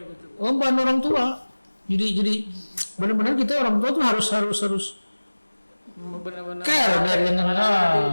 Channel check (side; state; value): both; inverted; correlation -1.00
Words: betul. Beban orang tua. Jadi benar-benar kita orang tua tuh harus benar-benar care dari ketika